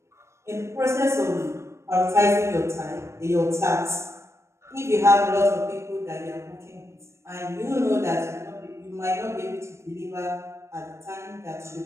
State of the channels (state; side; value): late; left; 0.13 ms